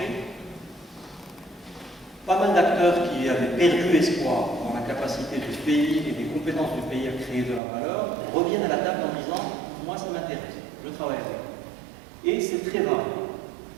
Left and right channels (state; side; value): drops out; left; at 7.6 s